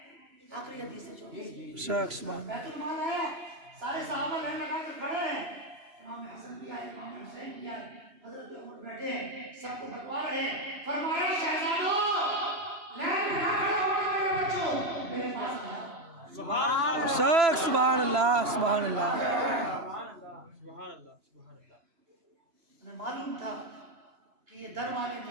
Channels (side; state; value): left; late; 3.0 ms